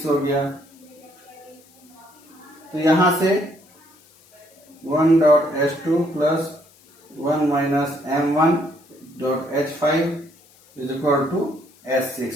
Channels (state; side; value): noise; left; hiss, 28 dB below the sound